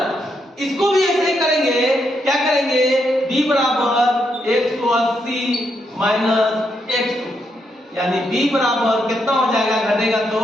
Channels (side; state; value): both; normal; correlation 0.79